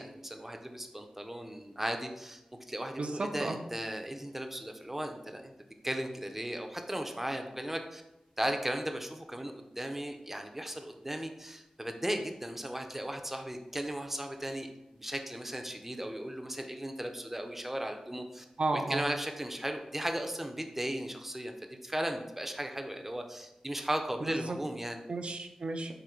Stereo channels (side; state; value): both; normal; correlation 0.95